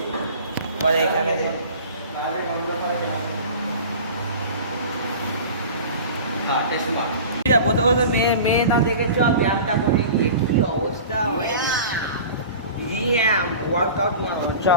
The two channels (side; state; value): both; inverted; correlation -0.38